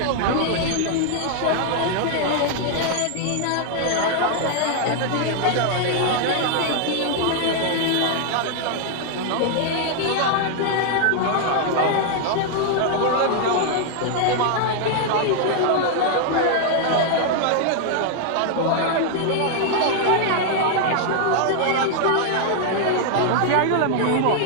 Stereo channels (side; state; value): both; different; correlation 0.00